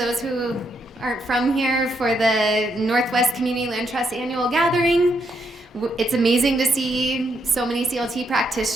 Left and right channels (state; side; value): normal; both; correlation 0.78